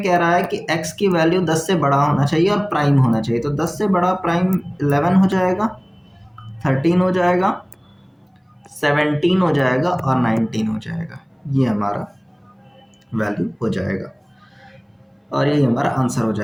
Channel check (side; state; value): both; identical; correlation 1.00